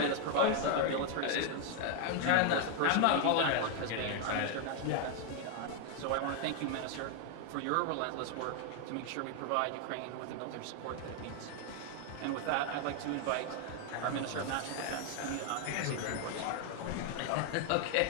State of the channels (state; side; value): different; both; correlation 0.01